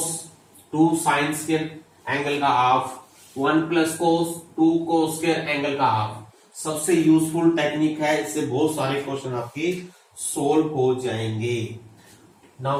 2 sine square angle का half, 1 plus cos 2 cos square angle का हाफ. सबसे यूजफुल टेक्निक है, इससे बहुत सारे क्वेश्चन आपके सोल्व हो जाएंगे.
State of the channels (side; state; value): both; identical; correlation 1.00